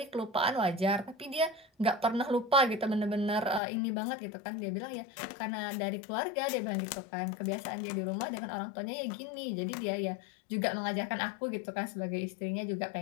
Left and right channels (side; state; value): right; drops out; at 3.6 s